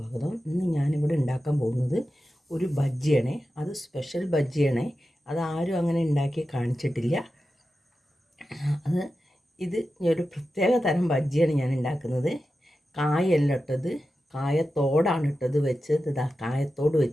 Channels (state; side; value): normal; both; correlation 0.92